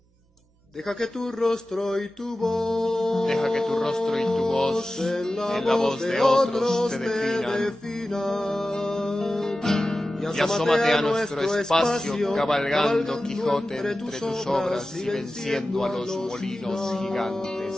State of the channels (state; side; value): normal; both; correlation 0.95